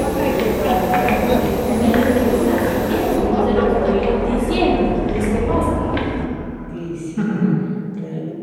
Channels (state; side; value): identical; both; correlation 1.00